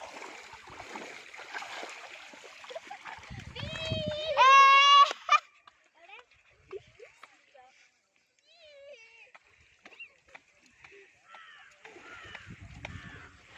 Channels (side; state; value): both; identical; correlation 1.00